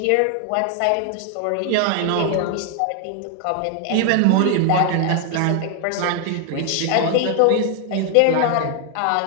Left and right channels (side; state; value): both; different; correlation 0.00